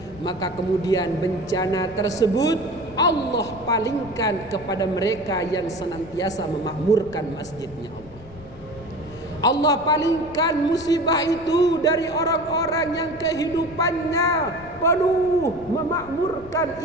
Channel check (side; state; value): left; noise; rumble, 19 dB below the sound